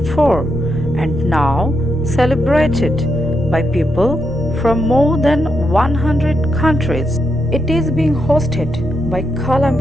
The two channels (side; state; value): both; normal; correlation 0.83